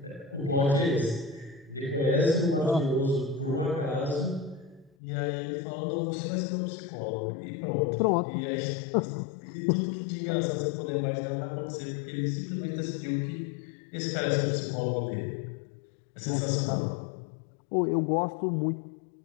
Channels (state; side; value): drops out; right; at 4.9 s